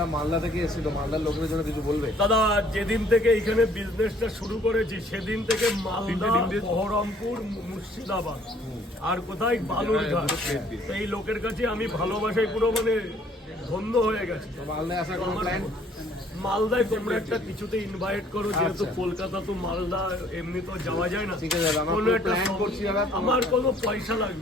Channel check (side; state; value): both; normal; correlation 0.60